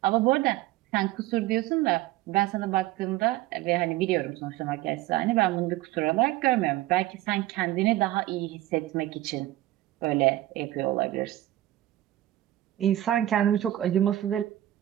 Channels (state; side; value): quieter; left; 15.1 dB